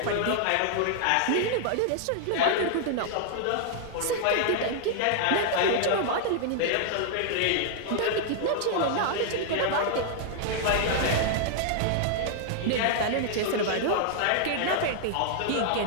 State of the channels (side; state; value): both; different; correlation -0.01